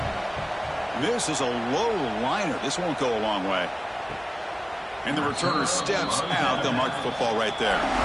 This is a low liner. This won't go a long way. And the returner steps out. They'll mark the football right there.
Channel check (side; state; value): both; identical; correlation 1.00